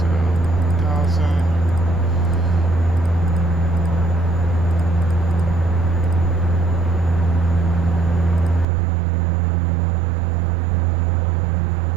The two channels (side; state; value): left; drops out; at 8.7 s